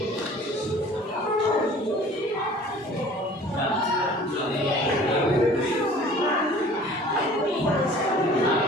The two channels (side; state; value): both; normal; correlation 0.48